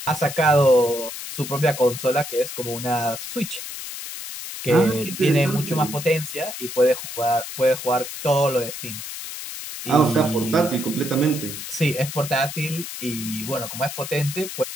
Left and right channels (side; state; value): left; noise; hiss, 9 dB below the sound